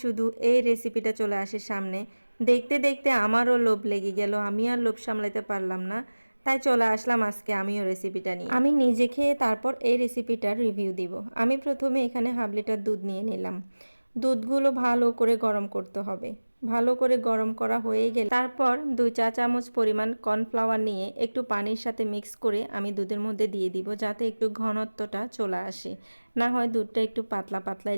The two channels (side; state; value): both; inverted; correlation -1.00